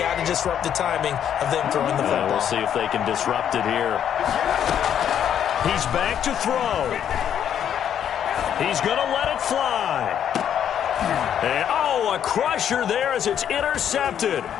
to disrupt the timing of them throwing the football. We'll see if they can disrupt it here. He's back to throw. He's going to let it fly. And, a crusher there as it's intercepted.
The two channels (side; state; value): right; quieter; 9.4 dB